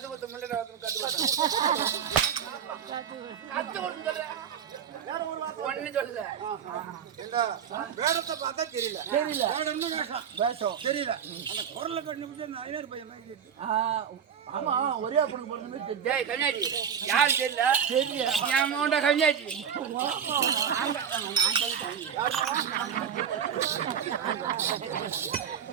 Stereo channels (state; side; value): quieter; left; 8.0 dB